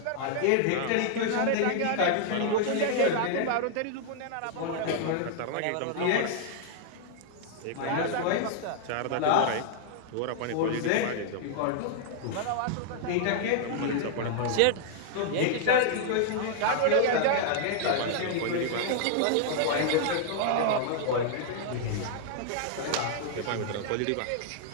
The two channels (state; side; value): different; both; correlation -0.01